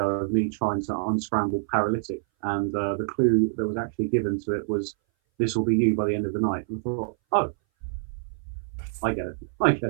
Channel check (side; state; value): left; silent; 59 dB below the other